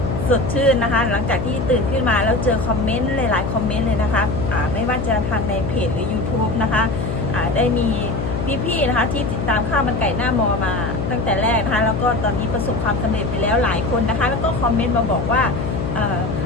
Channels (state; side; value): noise; left; hum, 3 dB below the sound